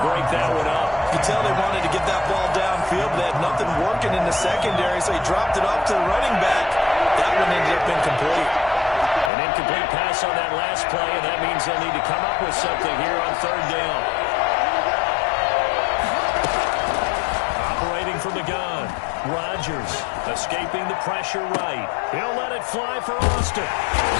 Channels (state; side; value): drops out; right; at 9.3 s